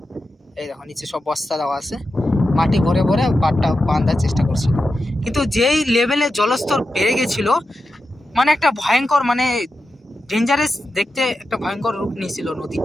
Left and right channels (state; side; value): normal; both; correlation 0.90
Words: এই দেখো নিচে সব বস্তা দেওয়া আছে, মাটি ভরে ভরে বাঁধটা বাঁধার চেষ্টা করছিল, কিন্তু যেই লেভেলে জলস্তর বেড়ে গেছিল মানে একটা ভয়ঙ্কর মানে ডেঞ্জারাস দেখতে একটা ভয়ঙ্কর রূপ নিয়েছিল